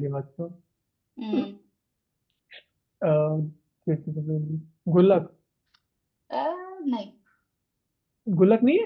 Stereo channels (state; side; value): identical; both; correlation 1.00